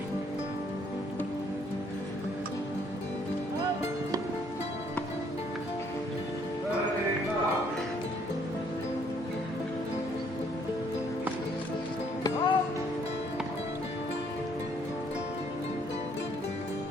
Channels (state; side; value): normal; both; correlation 0.65